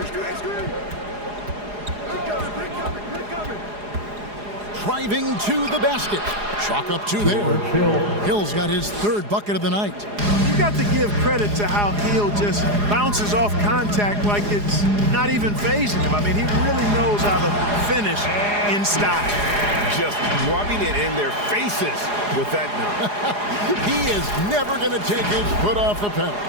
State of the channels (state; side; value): late; left; 4.8 ms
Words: Driving to the basket. Chalk up 2 there. Hill's got his 3rd bucket of the night. You got to give credit to how Hill just bounces off contact like it's not even phasing him. I mean, he really knows how to finish in style. Just rubbing it in their faces with that number. He is never going to take his foot off the pedal.